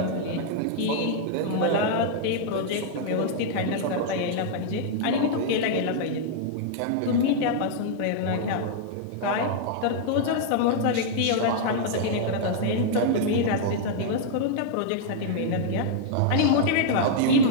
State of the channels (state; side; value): different; both; correlation -0.01